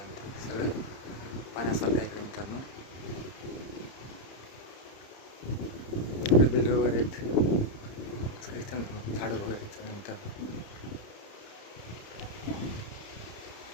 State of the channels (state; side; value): late; right; 30 ms